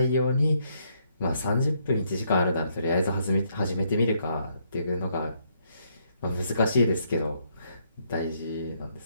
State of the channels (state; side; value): inverted; both; correlation -0.73